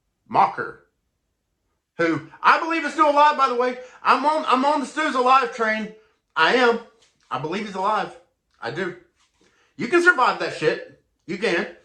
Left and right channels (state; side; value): identical; both; correlation 1.00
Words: Macher, who I believe is still alive, by the way. I'm on the Stu's alive train. I am. I believe he's alive. I do. You can survive that shit. You can.